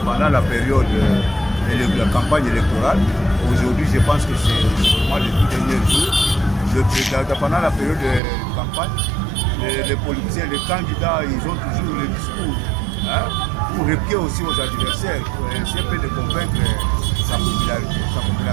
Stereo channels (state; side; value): drops out; left; at 8.2 s